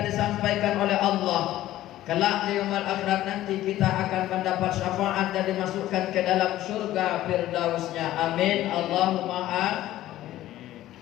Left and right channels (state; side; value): quieter; right; 14.4 dB